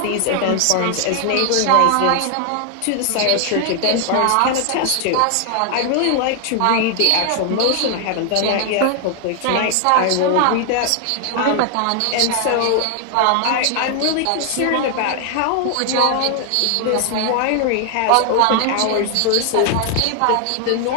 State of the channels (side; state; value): both; different; correlation 0.00